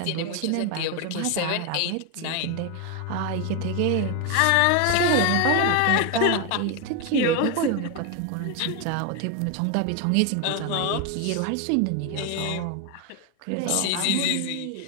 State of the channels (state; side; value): different; both; correlation 0.01